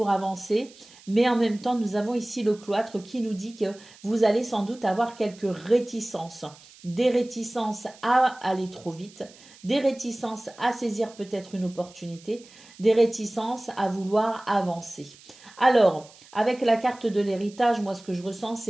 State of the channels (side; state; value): right; noise; hiss, 23 dB below the sound